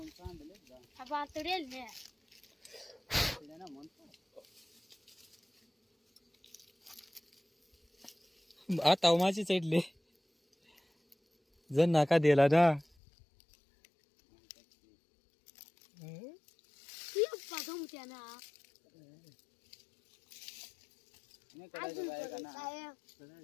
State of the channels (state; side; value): drops out; right; at 12.9 s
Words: आता माझी चढले जण नाका दिला ना.